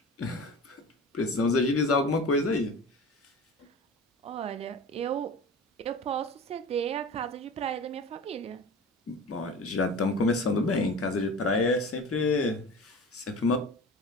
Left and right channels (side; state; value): both; normal; correlation 0.35